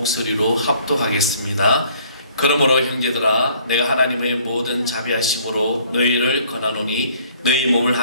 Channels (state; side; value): inverted; both; correlation -0.59